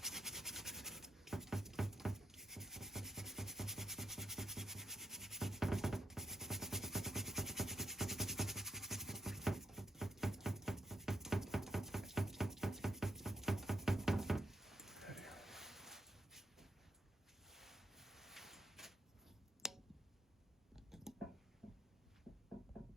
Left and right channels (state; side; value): normal; both; correlation 0.81